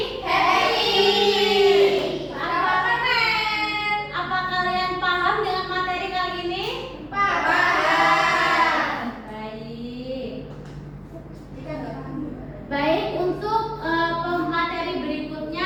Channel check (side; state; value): both; identical; correlation 1.00